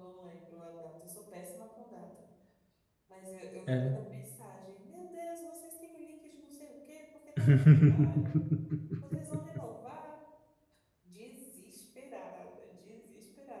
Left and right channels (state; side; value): identical; both; correlation 1.00